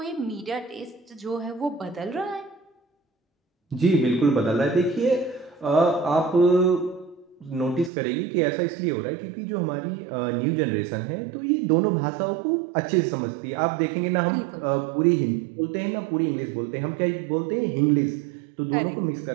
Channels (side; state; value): left; drops out; at 7.9 s